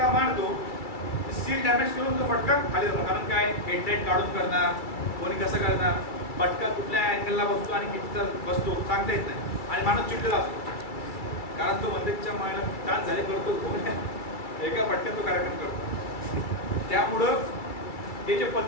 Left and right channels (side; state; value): right; late; 2.3 ms